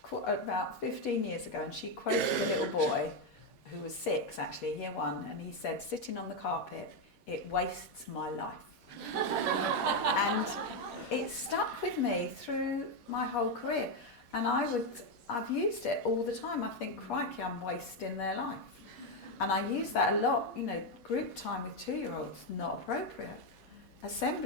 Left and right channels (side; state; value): both; normal; correlation 0.05